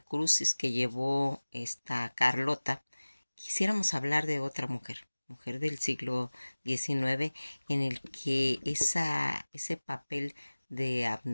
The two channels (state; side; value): inverted; both; correlation -1.00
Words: que llevó esta Carlota. Quisiéramos hablar de otra mujer del siglo XIX, en el que ese papel de